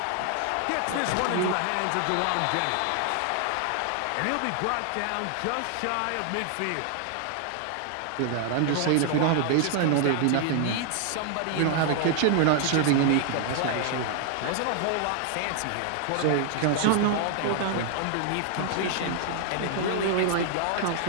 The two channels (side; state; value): both; different; correlation 0.00